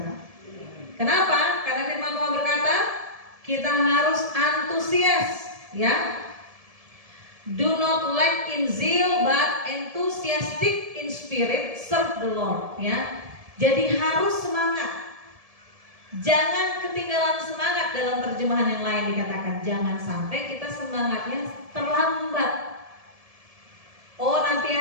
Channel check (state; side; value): late; left; 1.7 ms